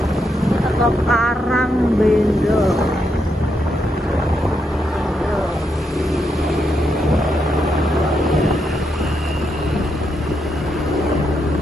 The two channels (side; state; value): both; normal; correlation 0.81